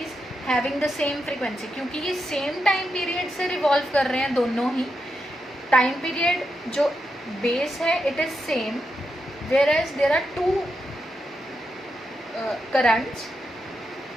having the same frequency. क्योंकि ये सेम टाइम पीरियड से रिवॉल्व कर रहे हैं दोनों ही, टाइम पीरियड जो base है it is same, whereas there are two currents,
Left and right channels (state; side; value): normal; both; correlation 0.85